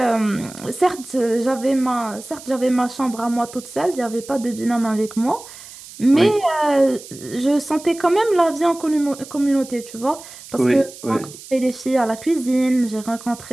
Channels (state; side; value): noise; right; hiss, 17 dB below the sound